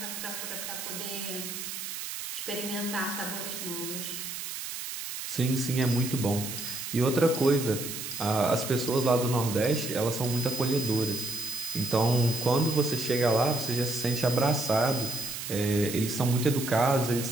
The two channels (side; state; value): right; noise; hiss, 7 dB below the sound